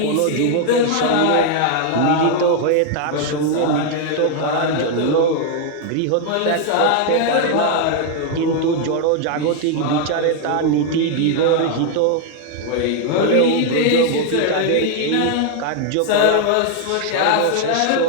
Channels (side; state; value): both; different; correlation 0.00